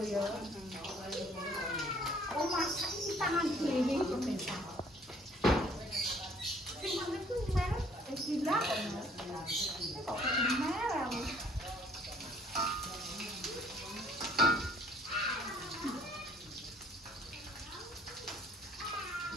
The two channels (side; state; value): both; normal; correlation 0.58